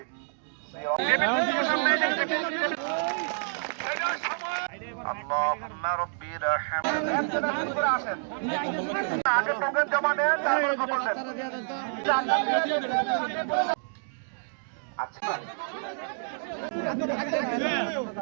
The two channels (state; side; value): silent; left; digital silence